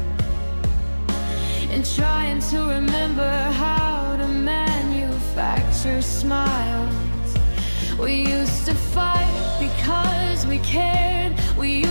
and trying to remember how to manufacture smiles. We used to fight because we cared. We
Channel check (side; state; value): both; inverted; correlation -1.00